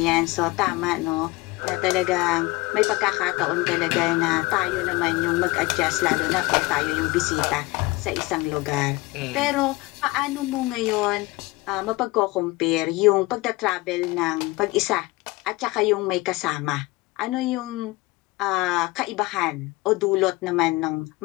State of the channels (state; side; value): quieter; right; 22.1 dB